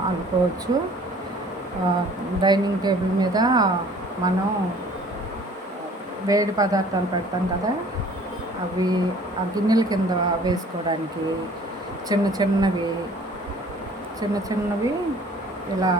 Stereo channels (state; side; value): normal; both; correlation 0.52